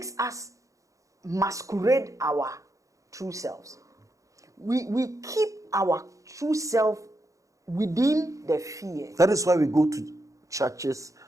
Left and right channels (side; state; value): left; late; 0.16 ms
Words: us masquerade our true selves. We keep our true self within the fear. That is why we go to churches